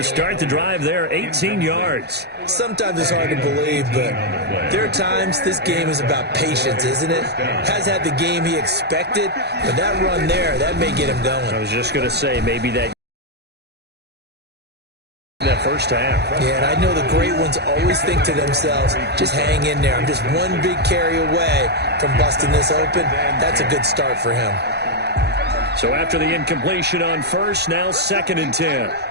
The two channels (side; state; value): left; late; 0.48 ms